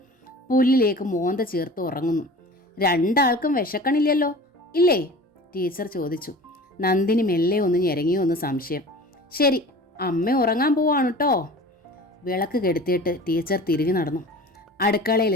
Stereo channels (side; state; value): both; normal; correlation 0.40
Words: പുല്ലിലേക്ക് മോന്ത ചേർത്ത് ഉറങ്ങുന്നു. രണ്ടാൾക്കും വിശക്കണില്ലല്ലോ ഇല്ലേ? ടീച്ചർ ചോദിച്ചു. നന്ദിനി മെല്ലെ ഒന്ന് ഞെരങ്ങിയോ ഒന്ന് സംശയം. ശരി, അമ്മ ഉറങ്ങാൻ പോവാണ് കേട്ടോ. വിളക്ക് കെടുത്തിയിട്ട് ടീച്ചർ തിരിഞ്ഞു നടന്നു.